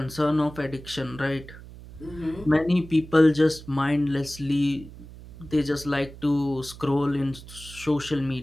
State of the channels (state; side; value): noise; right; hum, 16 dB below the sound